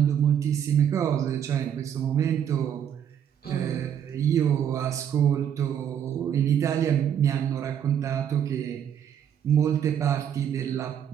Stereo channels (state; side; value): quieter; left; 9.1 dB